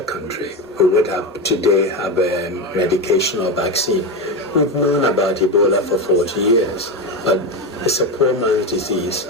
country, we would have today have a medication or vaccine. We've known about Ebola for 40 years, but it's a poor man's disease.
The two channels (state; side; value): normal; both; correlation 0.15